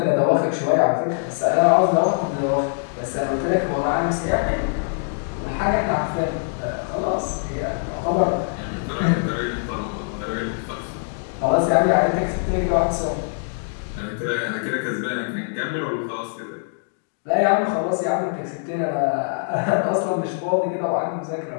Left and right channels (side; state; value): right; silent; digital silence